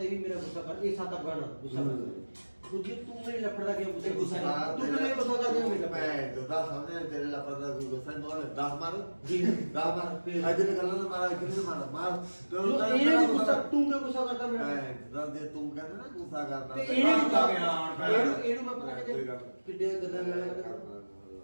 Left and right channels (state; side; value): inverted; both; correlation -1.00